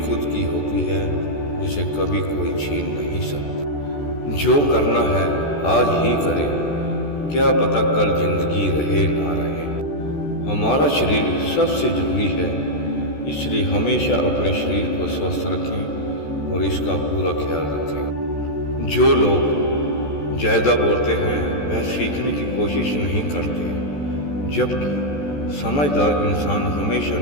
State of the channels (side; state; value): right; late; 14 ms